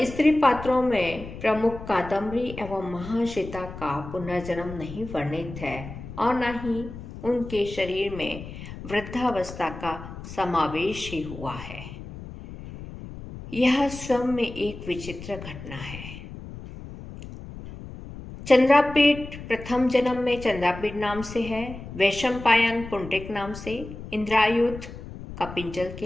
स्त्री पात्रों में प्रमुख कादम्बरी एवं महाश्वेता का पुनर्जन्म नहीं वर्णित है और न ही उनके शरीर में वृद्धावस्था का समावेश ही हुआ है। यह स्वयं में एक विचित्र घटना है। चंद्रापेट प्रथम जन्म में चंद्रापेट नाम से है, वैशंपायन पुंडरीक नाम से, इंद्रायुध कपिंजल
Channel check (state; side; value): noise; left; rumble, 12 dB below the sound